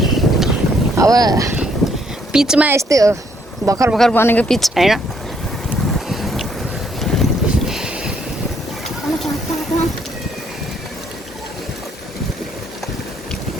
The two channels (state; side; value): normal; both; correlation 0.69